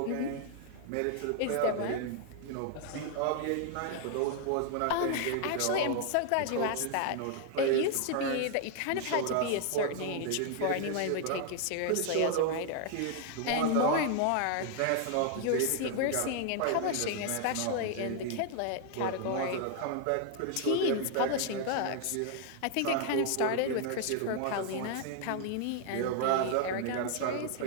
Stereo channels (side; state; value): both; different; correlation 0.00